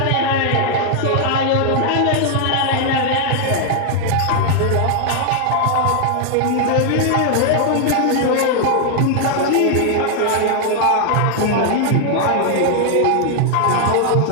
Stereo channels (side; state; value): both; different; correlation 0.00